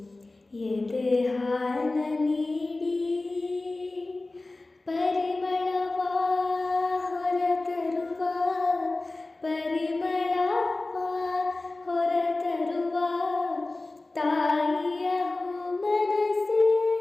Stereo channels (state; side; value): quieter; right; 3.1 dB